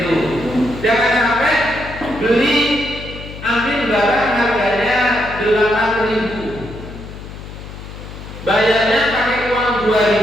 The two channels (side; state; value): left; noise; hum, 13 dB below the sound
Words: Jangan sampai beli ambil barang harganya 8.000, bayarnya pakai uang